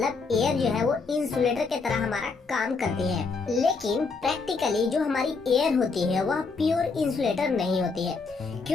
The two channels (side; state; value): right; quieter; 4.4 dB